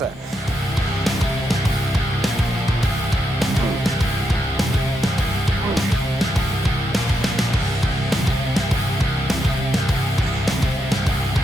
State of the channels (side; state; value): both; normal; correlation 0.82